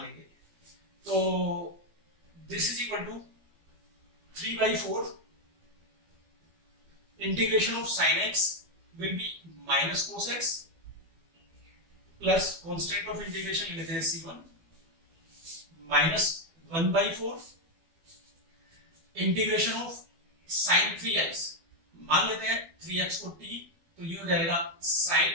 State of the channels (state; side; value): late; left; 12 ms